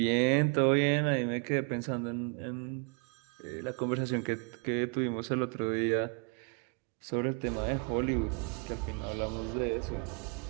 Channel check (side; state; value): left; quieter; 36.1 dB